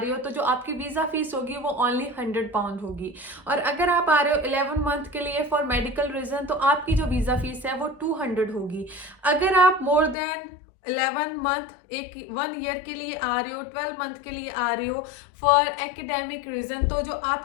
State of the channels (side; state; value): right; drops out; at 10.2 s